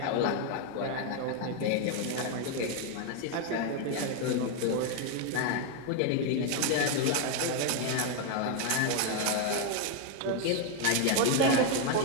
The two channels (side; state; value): both; different; correlation 0.01